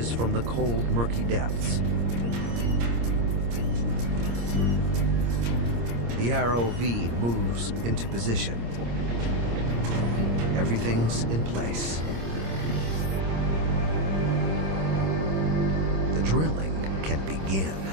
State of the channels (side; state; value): left; late; 26 ms